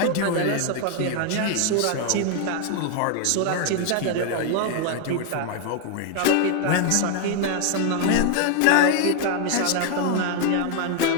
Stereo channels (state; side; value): different; both; correlation 0.00